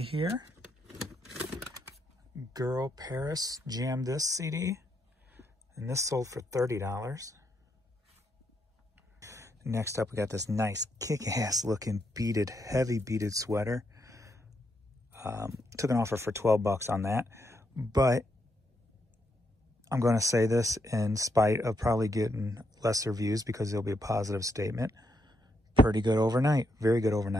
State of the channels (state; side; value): normal; both; correlation 0.78